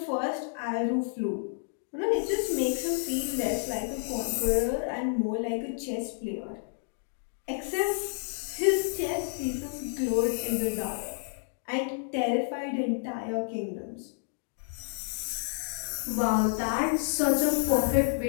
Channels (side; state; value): right; silent; digital silence